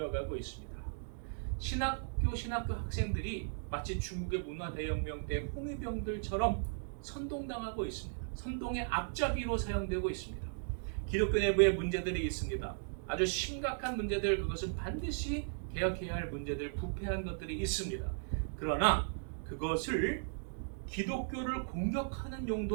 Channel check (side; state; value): left; silent; digital silence